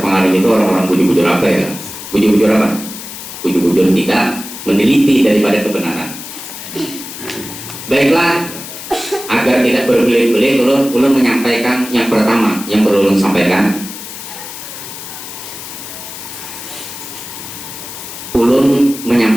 itu orang-orang bujur-bujur apa ya? Bujur-bujur apa? Bujur-bujur tidak meneliti daripada kebenaran. Baiklah, agar tidak berbelit-belit, ulun menyampaikan yang pertama yang perlu ulun sampaikan. Ulun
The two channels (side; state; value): left; noise; hiss, 11 dB below the sound